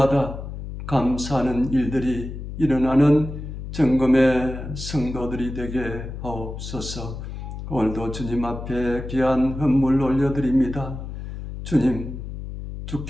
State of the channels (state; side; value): noise; left; hum, 8 dB below the sound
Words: 감사하는 일들이 일어나는 정금의 성도들이 되게 하옵소서. 오늘도 주님 앞에 귀한 헌물 올려드립니다. 주님,